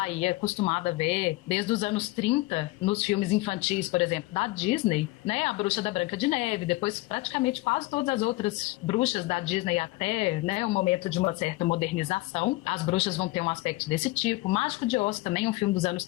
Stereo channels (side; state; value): right; quieter; 20.8 dB